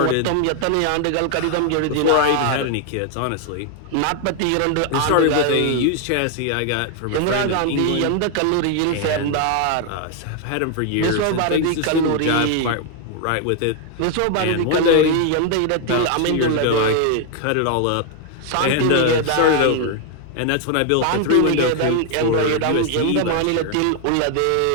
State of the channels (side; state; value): both; different; correlation 0.00